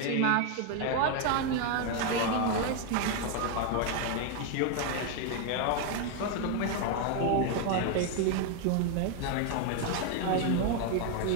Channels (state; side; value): different; both; correlation 0.01